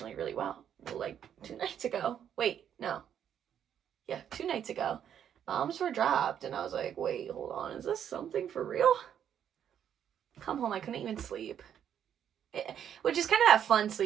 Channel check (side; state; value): left; quieter; 9.2 dB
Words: really well. Like, 2 nights ago, wait, no, yeah, 2 nights ago, bombs were dropped, and I was like, wait, hold on, is this something for real? Come home, I couldn't even sleep. Which is kind of that fun